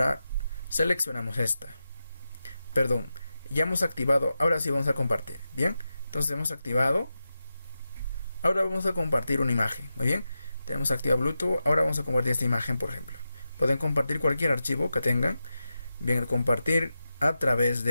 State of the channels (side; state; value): both; inverted; correlation -0.90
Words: seleccionamos ya hemos activado. Ahora sí vamos a compartir. Bien, entonces hemos activado. Ahora vamos a compartir una imagen. Muy bien, tenemos activado Bluetooth. Ahora vamos a compartir esta imagen, por ejemplo. Pueden compartir cualquier archivo que tengan. Bien, compartir a través